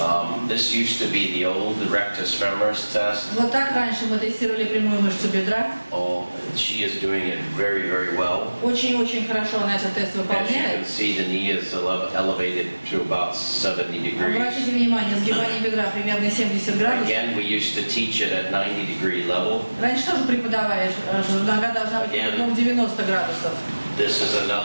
used to be the old rectus femoris test. Вот так раньше мы тестировали прямую мышцу бедра. Oh, she is doing it very, very well. Очень-очень хорошо она этот тест As you выполняет. can see, the knee is elevated to about 70 degrees. Обратите внимание, сгибание бедра примерно 70 градусов. Again, we used to teach it at 90-degree level. Раньше тоже преподавали, что нога должна быть примерно 90 градусов. This is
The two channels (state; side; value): inverted; both; correlation -1.00